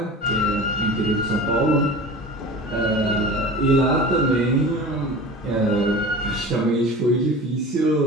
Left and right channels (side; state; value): both; normal; correlation 0.36